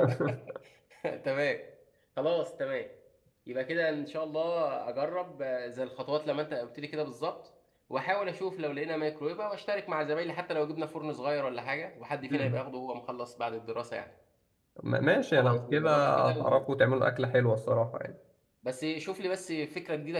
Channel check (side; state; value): both; identical; correlation 1.00